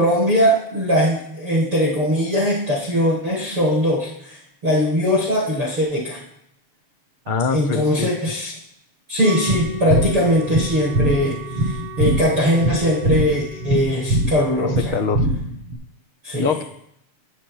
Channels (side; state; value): left; late; 6.8 ms